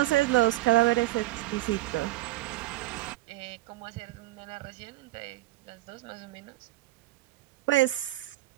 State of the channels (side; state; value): left; quieter; 17.1 dB